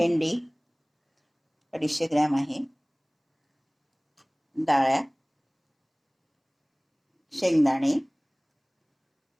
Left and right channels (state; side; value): identical; both; correlation 1.00